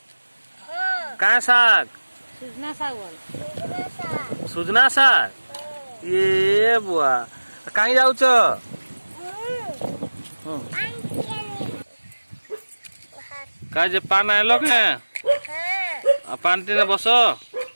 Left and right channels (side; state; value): both; inverted; correlation -1.00